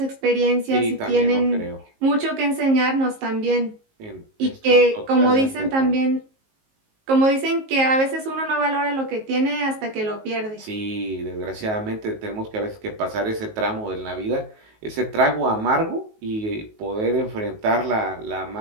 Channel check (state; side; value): late; left; 19 ms